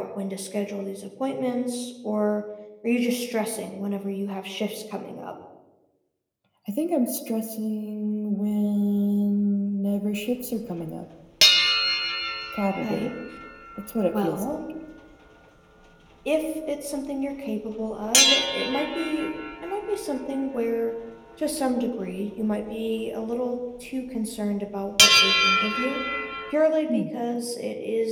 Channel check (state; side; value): identical; both; correlation 1.00